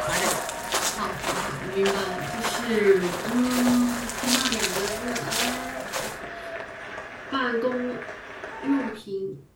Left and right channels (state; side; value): identical; both; correlation 1.00